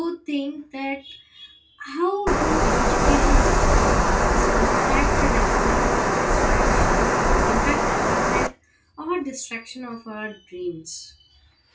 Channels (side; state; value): both; identical; correlation 1.00